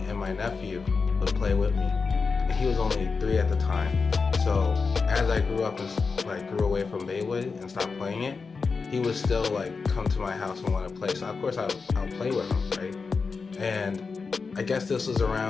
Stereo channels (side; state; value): right; quieter; 4.8 dB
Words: and my nephew would play with me. And he was only 3 at the time. So as I grew up and like grew away from Beyblade and stopped playing it, he would still like come to my house and want to play. So of course I'll play with him, right? And I guess this was